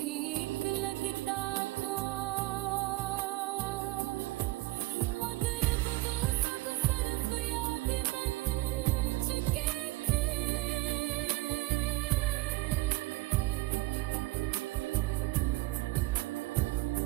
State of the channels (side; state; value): left; quieter; 19.6 dB